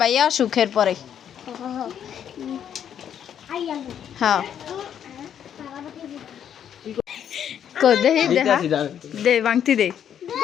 ভাইয়া সুখের পরে হ্যাঁ কো দেহি দেখা দে বাংতি দে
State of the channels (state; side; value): quieter; right; 9.2 dB